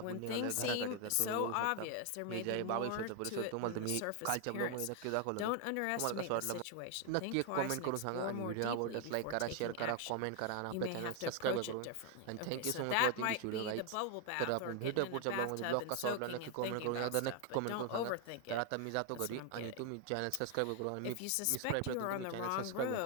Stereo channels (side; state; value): both; different; correlation 0.00